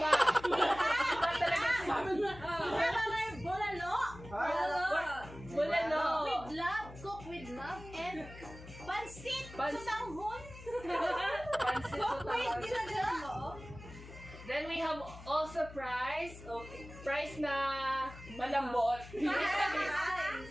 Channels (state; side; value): noise; left; hum, 15 dB below the sound